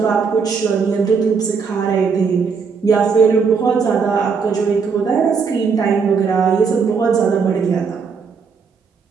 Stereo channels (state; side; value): quieter; left; 5.6 dB